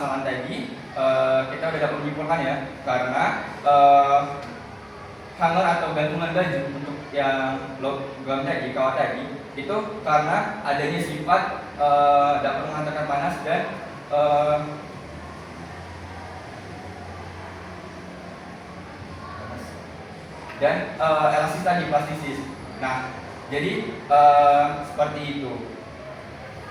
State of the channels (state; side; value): identical; both; correlation 1.00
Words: tadi kita sudah dapat menyimpulkan ya, karena hanger atau gantungan baju untuk yang logam tadi, kawat tadi, itu karena adanya sifat dapat menghantarkan panas dan elastis tadi, plastisis. Nah, jadi seperti itu.